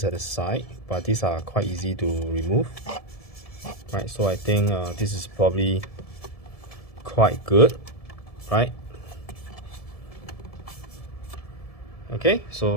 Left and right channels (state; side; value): late; right; 1.7 ms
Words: at the side, but these are quite easy to remove. Right, so I think this is probably quite good, right? Okay,